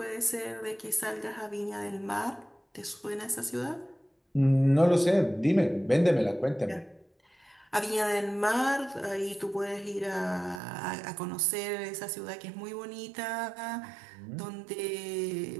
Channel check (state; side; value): drops out; left; at 10.6 s